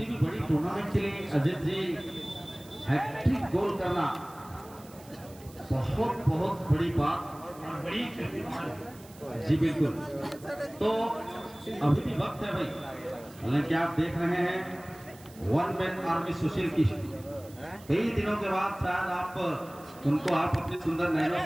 भी बड़ी टूर्नामेंट के लिए अजित जी हैट्रिक गोल करना बहुत बहुत बड़ी बात और बड़ी जी बिल्कुल। तो अभी भी वक्त है भाई, हालांकि आप देख रहे हैं वन मैन आर्मी सुशील की कई दिनों के बाद शायद आप उनको आप अपनी सुंदर नैनों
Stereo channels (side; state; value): right; noise; hiss, 22 dB below the sound